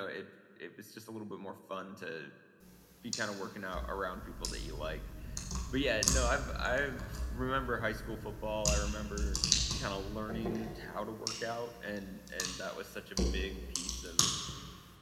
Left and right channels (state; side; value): identical; both; correlation 1.00